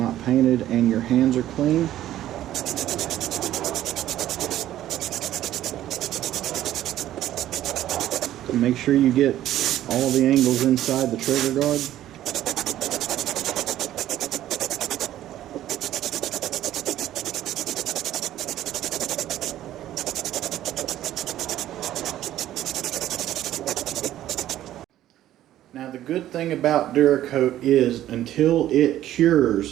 painted and your hands are clean. Make sure you get all the angles inside the trigger guard. Now the good thing about Duracoat is until it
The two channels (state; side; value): quieter; left; 13.0 dB